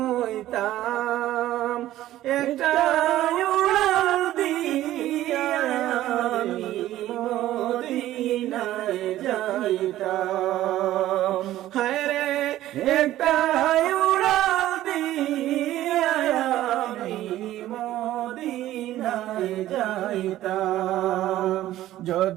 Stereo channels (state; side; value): quieter; left; 14.2 dB